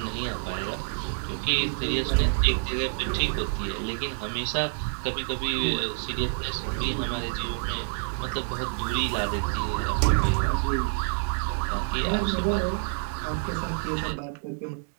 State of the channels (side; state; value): left; silent; 60 dB below the other